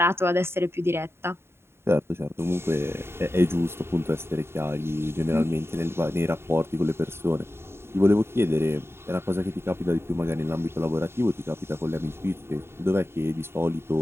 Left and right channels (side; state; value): left; late; 0.12 ms